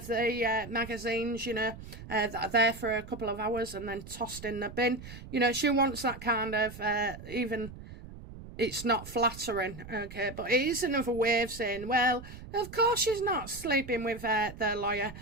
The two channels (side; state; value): right; noise; rumble, 14 dB below the sound